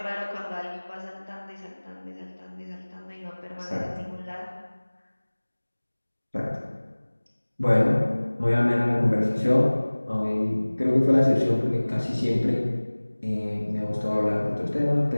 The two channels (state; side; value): inverted; both; correlation -1.00